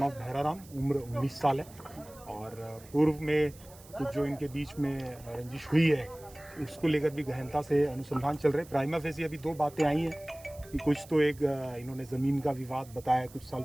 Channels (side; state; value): right; noise; hiss, 22 dB below the sound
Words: ऑफ भैराराम, उम्र 19 साल है और पूर्व में कुछ जो इनके बीच में रंजिश हुई है उसको लेकर भी गहनता से अनुसंधान चल रहे हैं। प्राइमा फेसी अभी दो बातें आई हैं कि कुछ तो एक इन्होंने ज़मीन का विवाद बताया कुछ साल